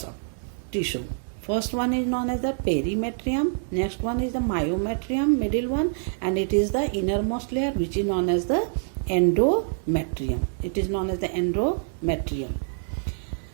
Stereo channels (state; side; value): silent; left; digital silence